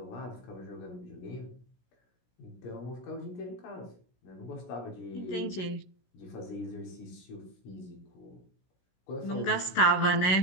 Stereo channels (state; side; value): late; right; 16 ms